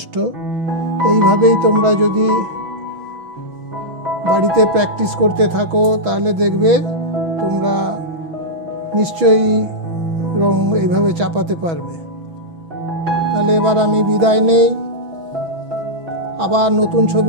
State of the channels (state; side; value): late; left; 6.1 ms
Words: এইভাবেই তোমরা যদি বাড়িতে প্র্যাকটিস করতে থাকো তাহলে দেখবে তোমরা নিশ্চয়ই রং এইভাবে চাপাতে পারবে। তাহলে এবার আমি বিদায় নেই, আবার নতুন